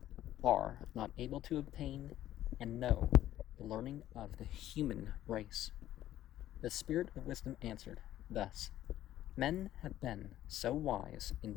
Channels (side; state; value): right; quieter; 13.0 dB